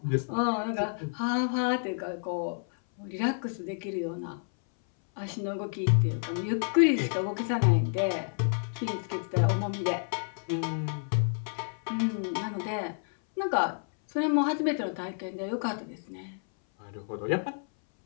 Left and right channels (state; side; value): silent; right; 58 dB below the other